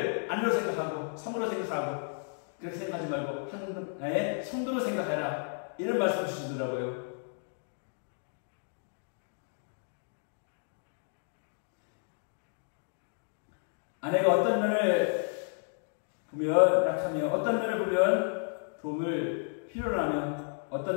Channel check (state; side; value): silent; right; 56 dB below the other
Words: 아내로 생각하고 성으로 생각하고 그렇게 생각하지 말고 하나의 성도로 생각해라. 이런 말씀 주시더라고요. 아내가 어떤 면을 보면 약하며 어떤 면을 보면 도움을 필요로 하며